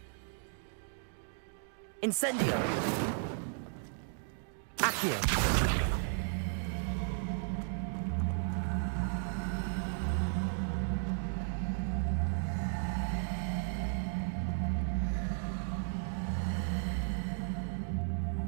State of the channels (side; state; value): left; silent; digital silence